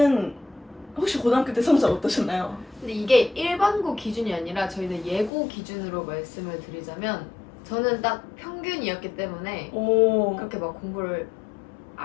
혹시 고등학교 때 성적 어떠셨나요? 근데 이게 일반고 기준이 아니라 저희는 예고 기준으로 말씀을 드리자면 저는 딱 평균이었기 때문에 오. 그렇게 막 공부를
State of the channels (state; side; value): drops out; right; at 5.3 s